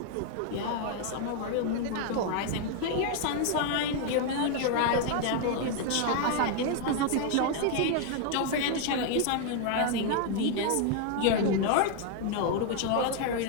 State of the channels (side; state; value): both; different; correlation 0.00